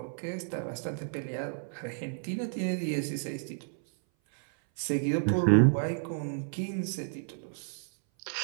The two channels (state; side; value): silent; left; 57 dB below the other